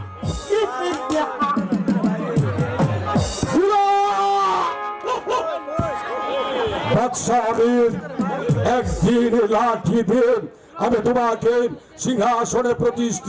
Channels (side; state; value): both; identical; correlation 1.00